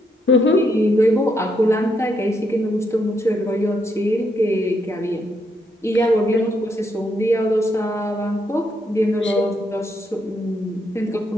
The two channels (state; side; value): normal; both; correlation 0.76